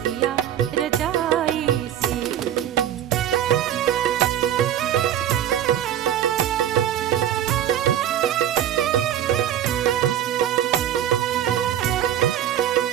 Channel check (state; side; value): quieter; left; 10.9 dB